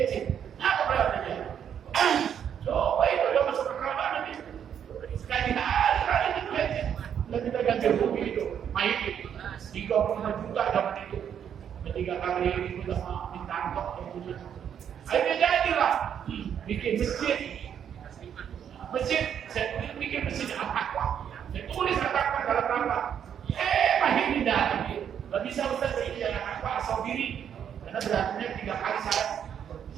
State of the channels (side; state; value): left; quieter; 8.7 dB